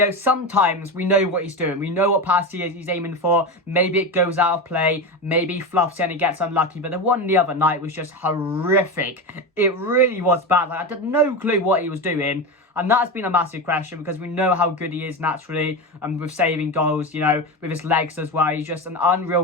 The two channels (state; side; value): normal; both; correlation 0.20